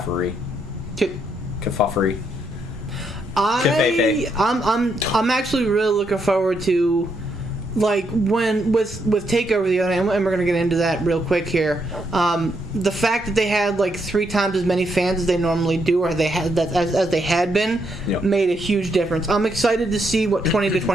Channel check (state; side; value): normal; both; correlation 0.77